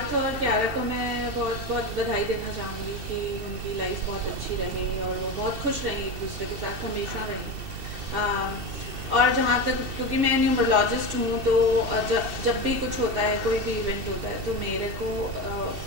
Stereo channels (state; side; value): late; left; 2.7 ms